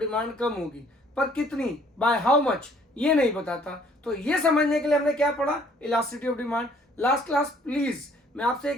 कम होगी, पर कितनी, बाय हाउ मच, ये नहीं बताता। तो ये समझने के लिए हमने क्या पढ़ा, elasticity of demand. Last class please मैं आपसे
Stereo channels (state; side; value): normal; both; correlation 0.60